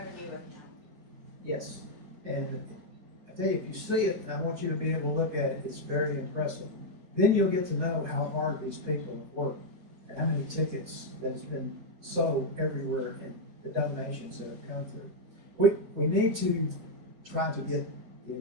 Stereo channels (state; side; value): late; left; 4.8 ms